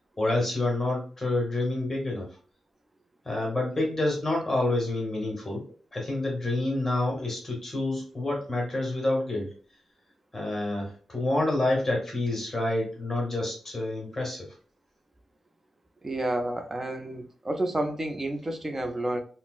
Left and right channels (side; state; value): both; normal; correlation 0.88